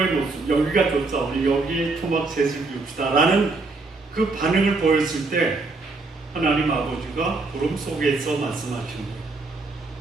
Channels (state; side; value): quieter; left; 3.6 dB